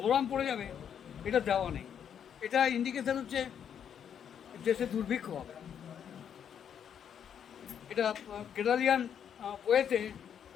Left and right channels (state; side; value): quieter; right; 8.5 dB